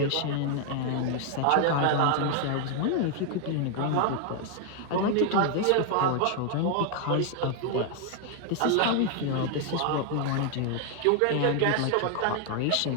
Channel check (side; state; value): both; different; correlation 0.00